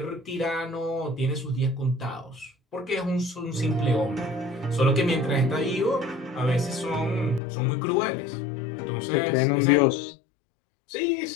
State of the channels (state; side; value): drops out; right; at 7.4 s